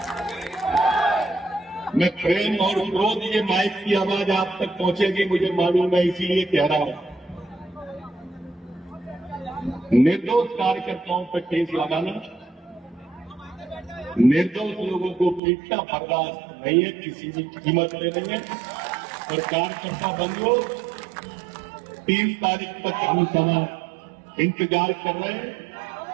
मैं प्रेम और क्रोध, ये माइक की आवाज आप तक पहुंचेगी मुझे मालूम है, इसीलिए कह रहा हूं। निर्दोष कार्यकर्ताओं पर केस लगाना, निर्दोष लोगों को पीटना बर्दाश्त नहीं है, किसी भी कीमत पे नहीं है। और कार्यकर्ता बंधुओं, 3 तारीख तक हम समाज इंतजार कर रहे हैं।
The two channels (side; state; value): left; drops out; at 15.4 s